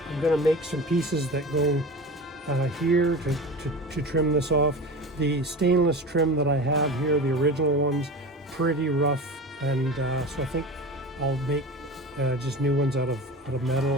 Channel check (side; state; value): both; normal; correlation 0.31